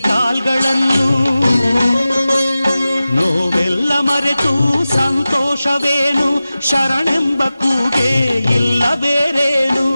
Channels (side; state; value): both; inverted; correlation -0.95